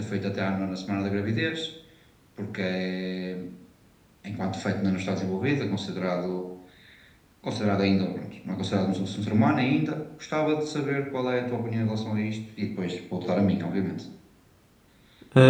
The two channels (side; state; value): both; identical; correlation 1.00